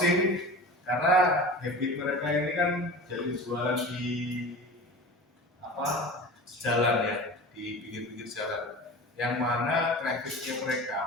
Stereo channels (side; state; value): both; normal; correlation 0.34